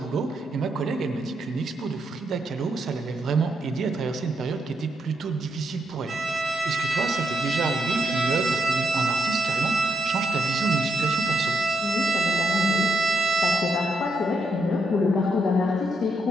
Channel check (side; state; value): both; normal; correlation 0.80